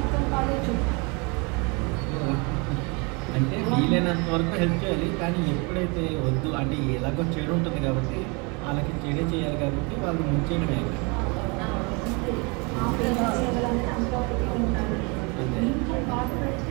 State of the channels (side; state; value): left; quieter; 30.4 dB